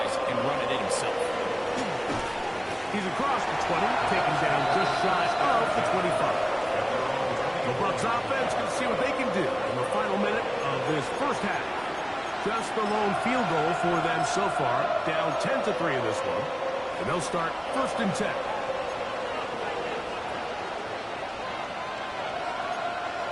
and run it in himself. He's across the 20, taken down just shy of the 25. The Bucs offense can see what they can do in the final minute of this first half. Just the lone field goal for them so far, down 10-3 in this one, and they'll start first and 10.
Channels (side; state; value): both; identical; correlation 1.00